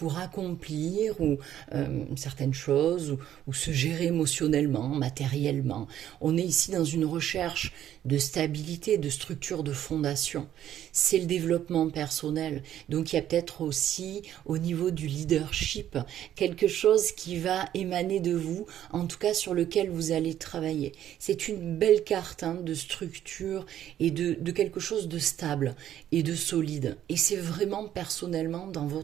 accomplir certaines choses ou se gérer émotionnellement, matériellement. On est ici dans une recherche de stabilité, de structure, de fondation. C'est le développement personnel. Donc il y a peut-être aussi au niveau du leadership quelque chose qui va émaner de vous, en tout cas sur lequel vous allez travailler. C'est une belle carte de structure et de quelque chose de stable et de solide. Et c'est vraiment personnellement dans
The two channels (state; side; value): quieter; left; 11.3 dB